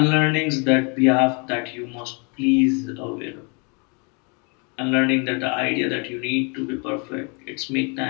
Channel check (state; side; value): quieter; right; 33.9 dB